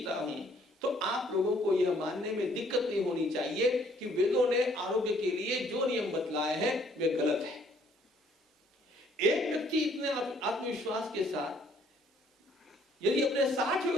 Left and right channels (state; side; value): normal; both; correlation 0.62